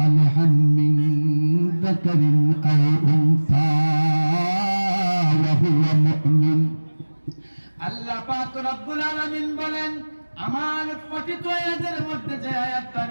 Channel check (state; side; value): inverted; both; correlation -1.00